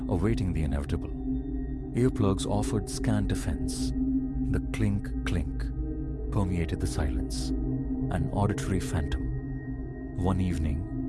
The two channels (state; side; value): identical; both; correlation 1.00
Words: awaiting the inevitable. Earplugs offered scant defense. The clink-clink permeated the silence, an auditory phantom. One